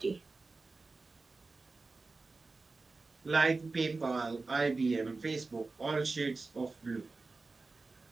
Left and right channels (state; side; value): quieter; left; 3.7 dB